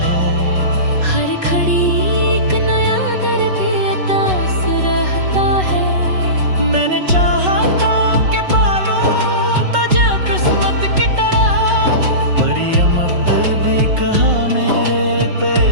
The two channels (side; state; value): left; late; 5.4 ms